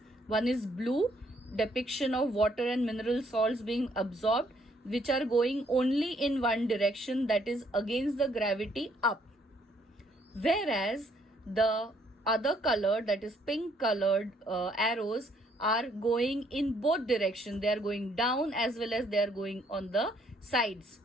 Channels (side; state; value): both; normal; correlation 0.67